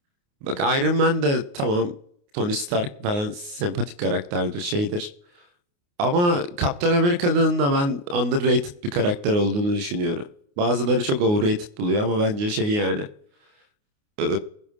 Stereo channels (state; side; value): late; left; 29 ms